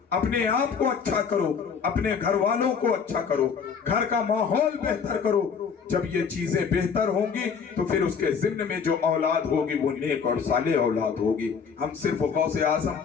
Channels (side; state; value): right; quieter; 6.3 dB